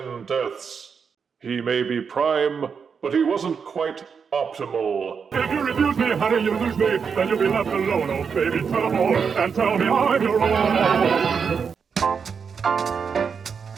deaths. He may be Prime, but he wasn't quite optimal. If you refuse me, honey, you lose me. Then you'll be left alone, oh baby, trouble. And tell me I'm your own.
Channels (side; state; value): left; quieter; 6.2 dB